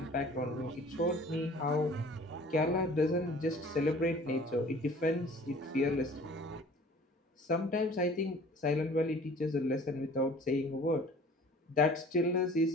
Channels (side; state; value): both; normal; correlation 0.48